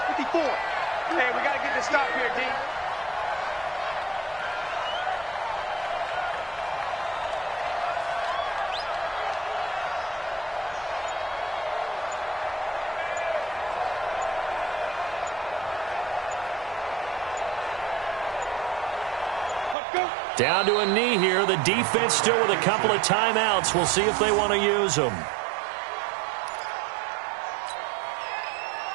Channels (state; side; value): drops out; left; at 19.8 s